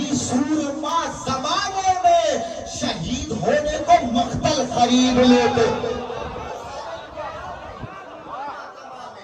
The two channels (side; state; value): both; identical; correlation 1.00